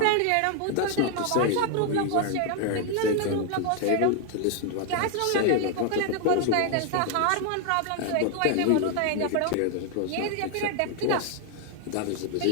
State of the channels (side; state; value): both; different; correlation 0.00